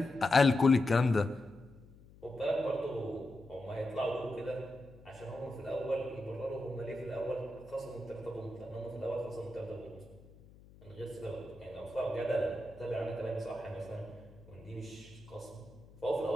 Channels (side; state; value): left; noise; hum, 22 dB below the sound